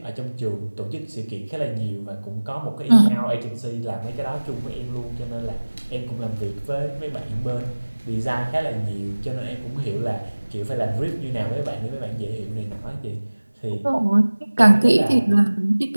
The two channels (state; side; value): inverted; both; correlation -1.00